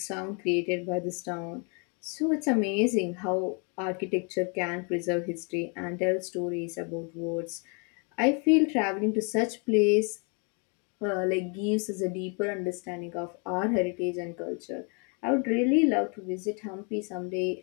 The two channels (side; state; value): right; quieter; 36.3 dB